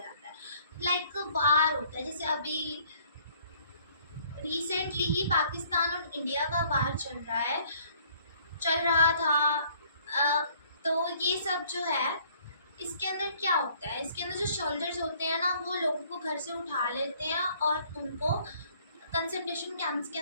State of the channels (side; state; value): both; inverted; correlation -0.60